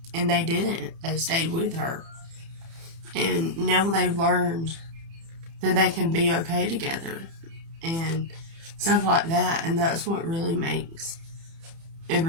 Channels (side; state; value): left; late; 30 ms